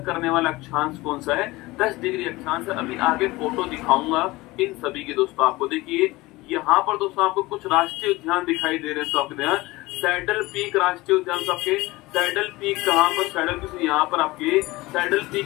करने वाला अक्षांश कौन सा है, 10 डिग्री अक्षांश है। अभी आगे फोटो दिखाऊंगा इन सभी के दोस्तों आपको। देखिए यहाँ पर दोस्तों आपको कुछ राष्ट्रीय उद्यान दिखाई दे रहे हैं, तो आपके सैडल पीक राष्ट्रीय उद्यान, आपके सैडल पीक कहाँ पर, सैडल पीक यहाँ पर, आपके सैडल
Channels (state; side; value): quieter; right; 20.5 dB